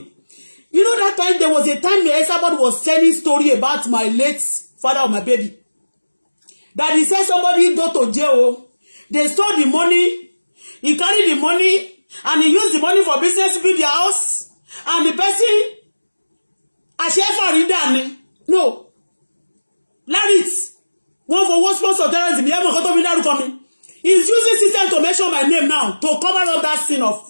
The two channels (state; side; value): inverted; both; correlation -1.00